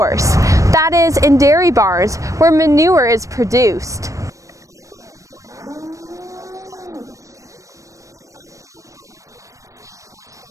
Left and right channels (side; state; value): left; late; 0.16 ms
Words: that is, in dairy barns where manure is produced.